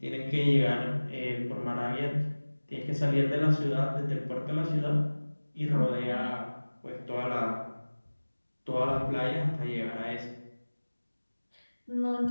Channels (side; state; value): both; inverted; correlation -1.00